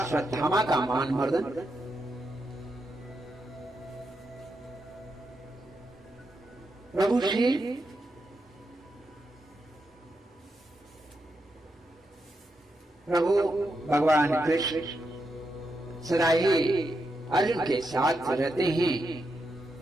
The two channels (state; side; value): normal; both; correlation 0.84